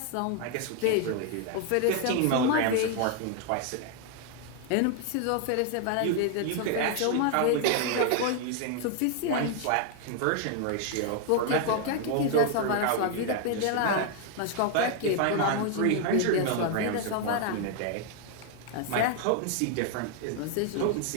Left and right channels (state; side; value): different; both; correlation 0.00